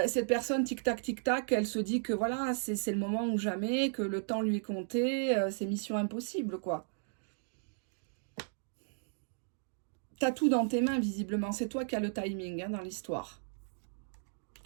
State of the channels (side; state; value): left; silent; digital silence